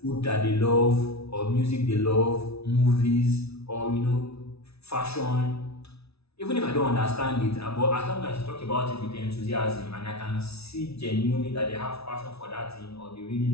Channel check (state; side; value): late; right; 0.79 ms